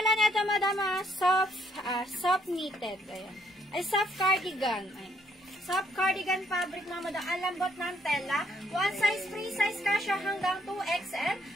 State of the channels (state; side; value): normal; both; correlation 0.70